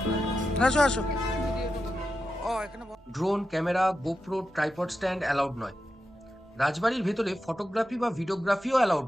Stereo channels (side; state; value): both; normal; correlation 0.89